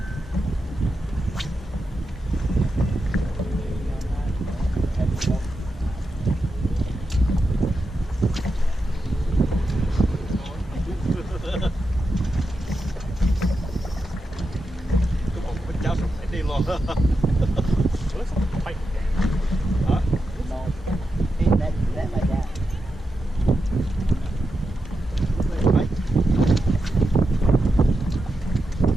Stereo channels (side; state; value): both; normal; correlation 0.88